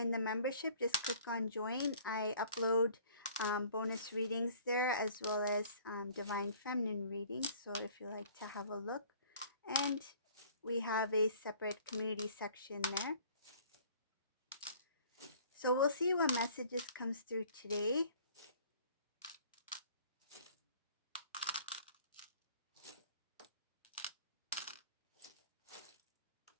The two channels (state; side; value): inverted; both; correlation -0.52